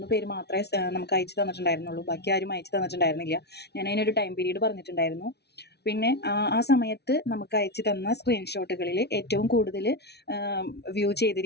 പേര് മാത്രമേ നമുക്ക് അയച്ചു തന്നിട്ടുണ്ടായിരുന്നുള്ളൂ. ബാക്കി ആരും അയച്ചു തന്നിട്ടുണ്ടായിരുന്നില്ല. ഞാൻ അതിനൊരു ടൈം പീരീഡ് പറഞ്ഞിട്ടുണ്ടായിരുന്നു. പിന്നെ ആ സമയത്ത് നമുക്ക് അയച്ചു തന്ന സ്ക്രീൻഷോട്ടുകളിൽ ഏറ്റവും കൂടുതൽ വ്യൂ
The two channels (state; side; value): late; right; 0.49 ms